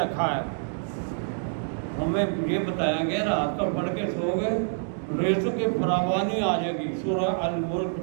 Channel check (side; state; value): left; silent; digital silence